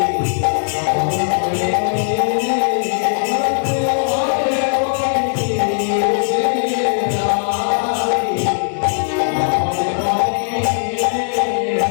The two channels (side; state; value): right; silent; digital silence